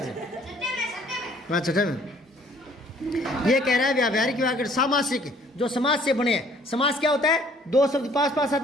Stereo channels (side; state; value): both; normal; correlation 0.58